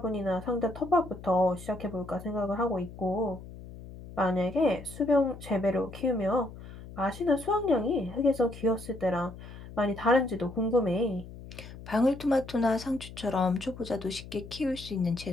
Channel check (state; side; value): noise; left; hum, 15 dB below the sound